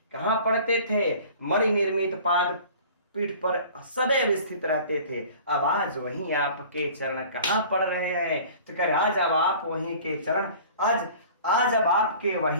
कहां पड़ते थे? मणि निर्मित पाद पीठ पर सदैव स्थित रहते थे। अब आज वहीं आपके चरण कहां पड़ रहे हैं? तो कह आज अब आप वहीं के चरण, आज अब आपके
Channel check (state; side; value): inverted; both; correlation -0.45